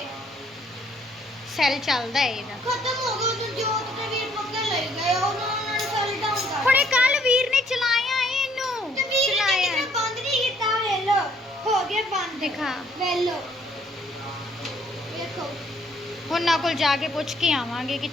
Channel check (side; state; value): both; normal; correlation 0.64